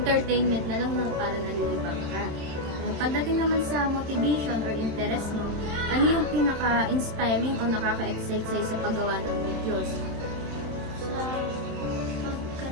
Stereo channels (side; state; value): left; late; 27 ms